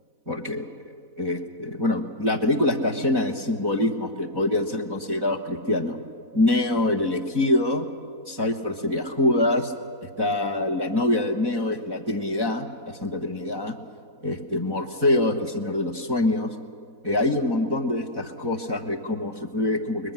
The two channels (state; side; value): late; left; 4.1 ms